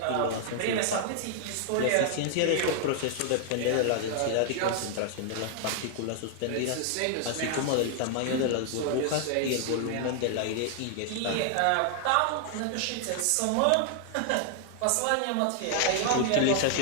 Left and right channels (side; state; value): both; different; correlation 0.00